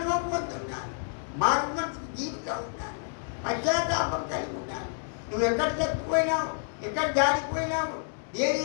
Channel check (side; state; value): right; silent; digital silence